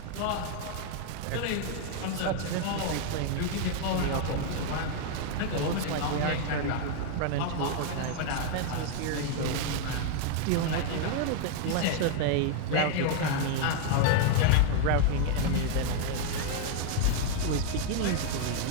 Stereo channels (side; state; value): both; different; correlation 0.00